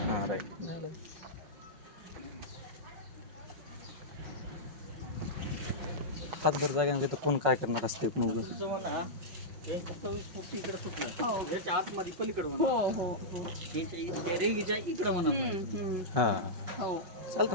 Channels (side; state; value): left; late; 5.4 ms